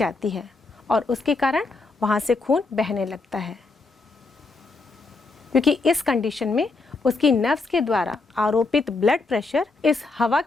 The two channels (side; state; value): right; quieter; 3.7 dB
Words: है और उसके कारण वहाँ से खून बहने लगता है, क्योंकि इस कंडीशन में उसकी नर्व्स के द्वारा आरोपित ब्लड प्रेशर इस हवा